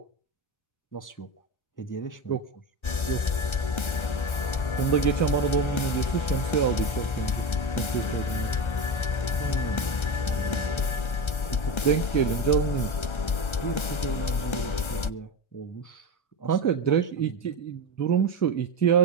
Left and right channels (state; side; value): late; right; 1.3 ms